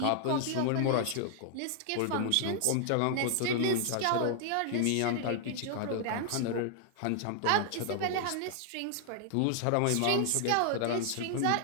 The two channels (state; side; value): different; both; correlation 0.00